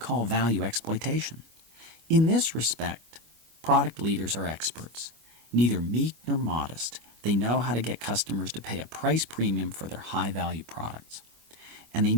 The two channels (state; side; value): late; left; 25 ms